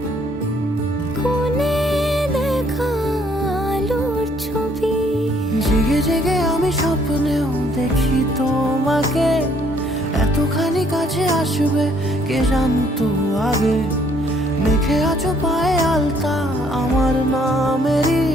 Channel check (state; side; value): normal; both; correlation 0.65